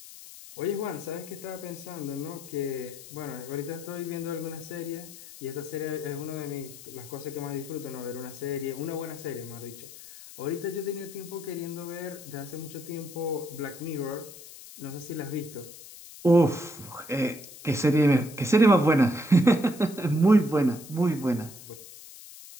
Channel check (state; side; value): noise; left; hiss, 16 dB below the sound